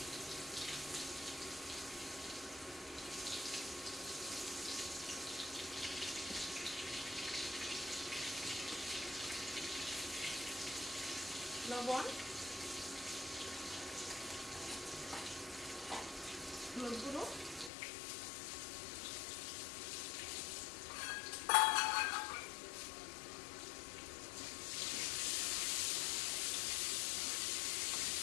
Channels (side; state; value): right; drops out; at 17.7 s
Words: লবণ, হলুদ গুঁড়ো,